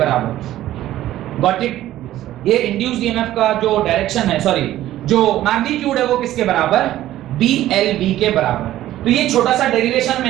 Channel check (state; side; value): quieter; left; 13.9 dB